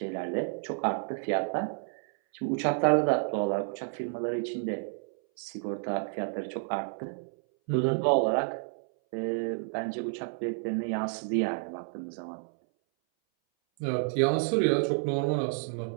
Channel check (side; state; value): left; silent; 58 dB below the other